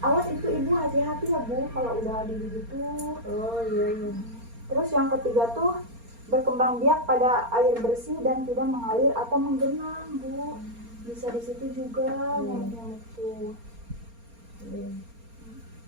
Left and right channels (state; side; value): late; left; 4.3 ms